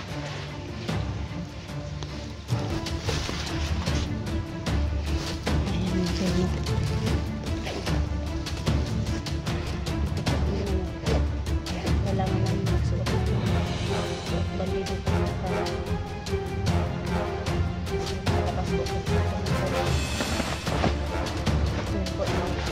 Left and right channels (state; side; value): identical; both; correlation 1.00